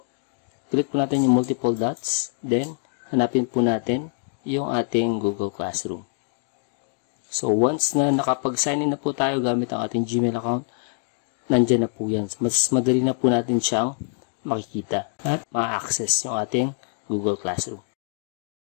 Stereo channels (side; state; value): right; silent; digital silence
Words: Click po natin yung multiple dots, then hanapin po natin yung ating Google Classroom. So once na nakapag-sign in na po tayo gamit ang ating Gmail account, nandyan na po yan. Mas madali na po natin siyang makikita at ma-access yung ating Google Classroom.